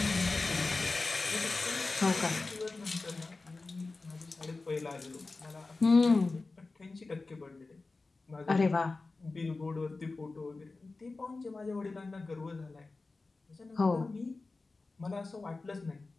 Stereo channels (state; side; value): quieter; right; 3.6 dB